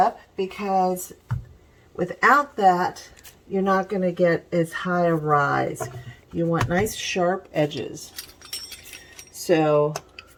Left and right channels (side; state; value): both; identical; correlation 1.00